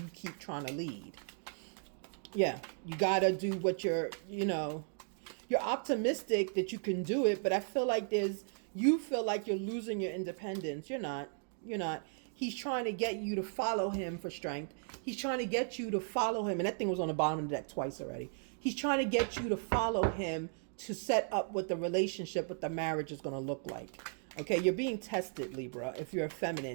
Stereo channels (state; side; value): silent; left; 54 dB below the other